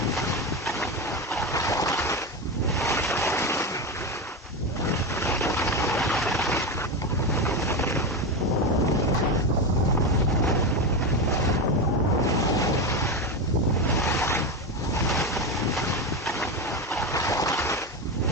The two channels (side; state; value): both; normal; correlation 0.16